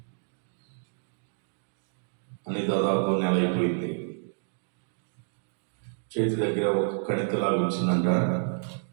అని దాదాపు నెల అయిపోయింది. చేతి దగ్గర ఒక కణితలాగా వచ్చిందంట.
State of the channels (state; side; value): silent; left; digital silence